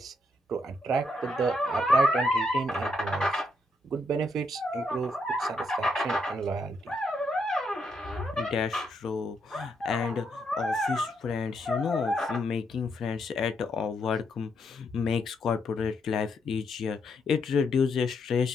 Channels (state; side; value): normal; both; correlation 0.77